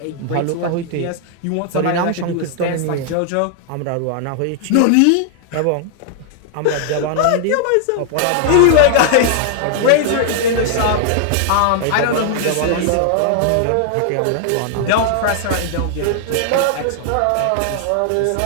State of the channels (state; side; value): different; both; correlation 0.00